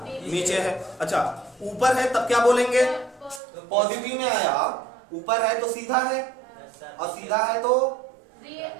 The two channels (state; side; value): drops out; left; at 3.4 s